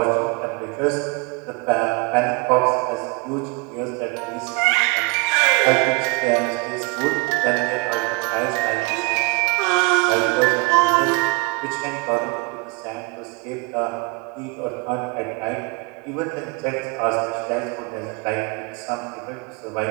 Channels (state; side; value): quieter; left; 28.3 dB